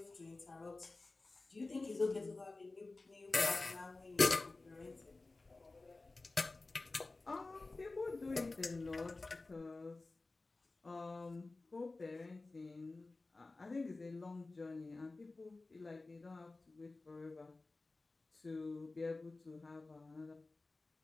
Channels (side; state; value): right; quieter; 3.4 dB